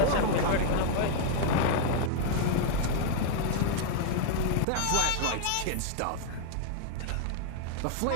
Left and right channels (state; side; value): different; both; correlation -0.01